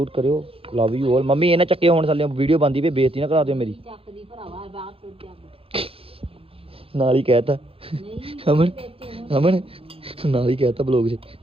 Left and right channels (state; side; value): late; left; 0.27 ms